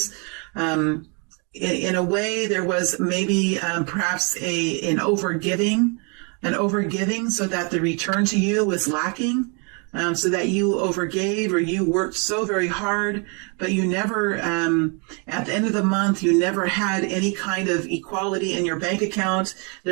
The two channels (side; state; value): left; quieter; 34.4 dB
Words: In a way, there was maybe perhaps an overgiving so that the return to you was lacking. So that you overgave or you worked so very hard, but you never, at the end of the month, you never had any kind of equality in your bank account.